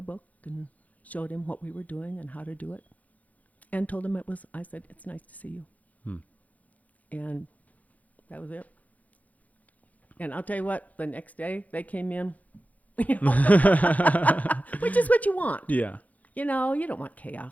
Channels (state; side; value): late; right; 0.075 ms